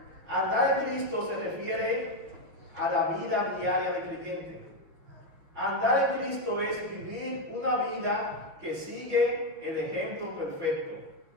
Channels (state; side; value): late; left; 6.5 ms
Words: andar en Cristo se refiere a la vida diaria del creyente. Andar en Cristo es vivir una vida que sigue el ejemplo perfecto.